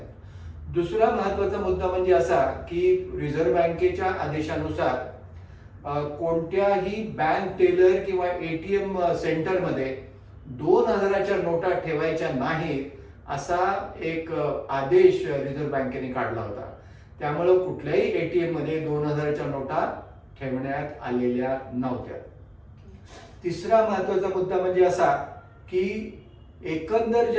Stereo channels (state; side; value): identical; both; correlation 1.00